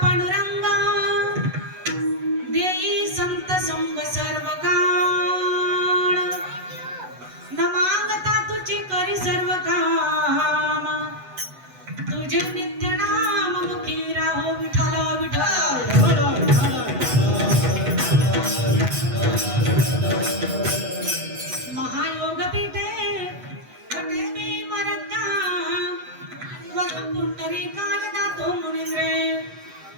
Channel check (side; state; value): left; late; 8.0 ms